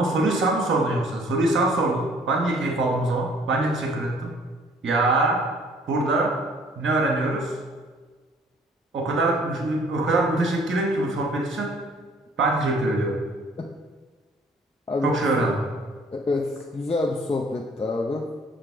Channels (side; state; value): both; normal; correlation 0.57